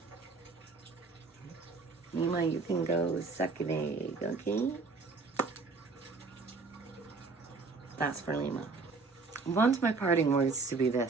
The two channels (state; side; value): quieter; left; 4.1 dB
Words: Lima, you can go suck an egg, okay? That's for Lima. I want my parting words to be